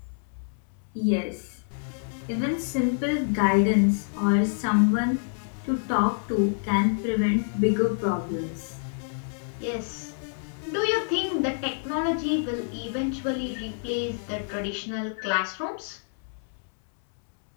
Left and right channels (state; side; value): silent; right; 60 dB below the other